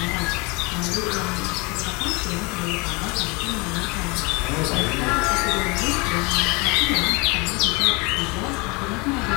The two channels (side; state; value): right; quieter; 28.0 dB